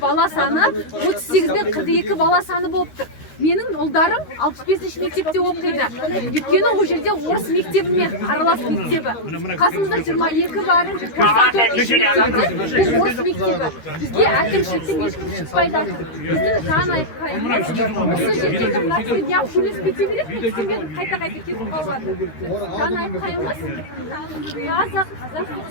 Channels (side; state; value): right; late; 13 ms